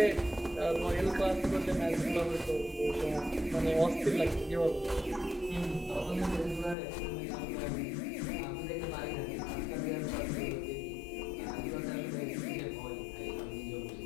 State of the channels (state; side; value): drops out; right; at 6.8 s